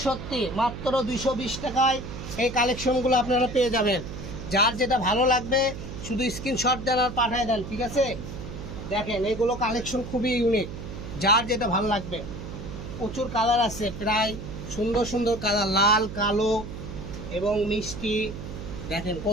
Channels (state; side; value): noise; right; hum, 9 dB below the sound